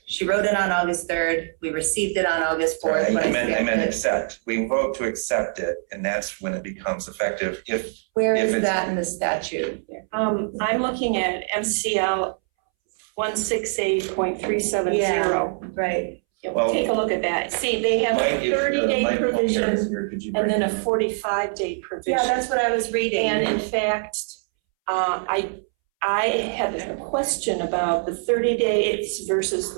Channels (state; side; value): silent; left; 63 dB below the other